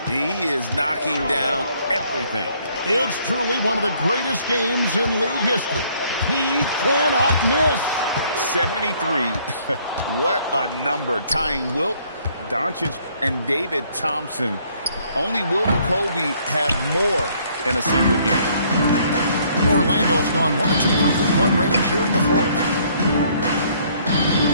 He is knocking down everything. It's truly one of the greatest games in league history. He cannot miss. 73. What a number. Tying Wilt, Doncic, and David Thompson. Only Wilt and Kobe have more in a single game. Orlando's gone 1 of 2 from three-point range here in the fourth.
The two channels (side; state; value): both; inverted; correlation -0.64